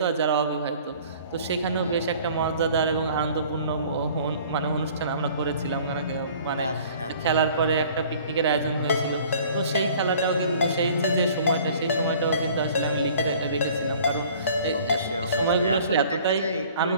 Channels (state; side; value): inverted; both; correlation -0.51